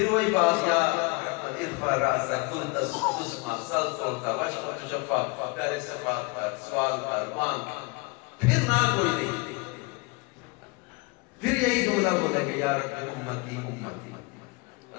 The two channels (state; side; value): quieter; right; 27.5 dB